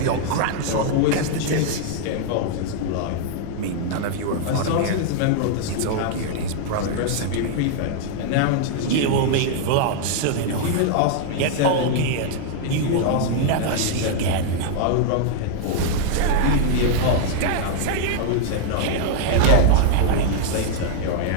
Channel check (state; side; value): different; both; correlation 0.00